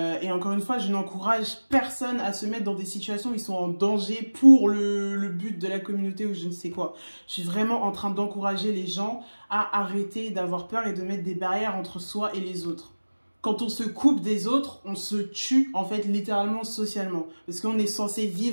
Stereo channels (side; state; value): both; inverted; correlation -1.00